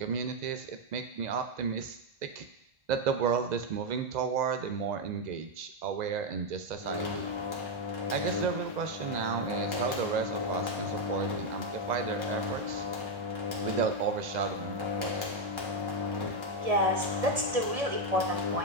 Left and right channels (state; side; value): late; left; 1.7 ms